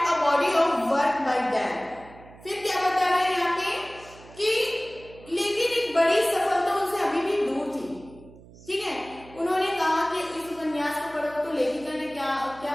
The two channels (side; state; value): right; noise; hum, 21 dB below the sound